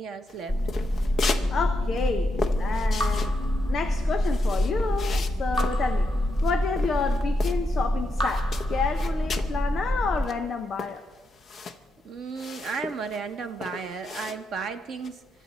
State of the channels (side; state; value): both; normal; correlation 0.83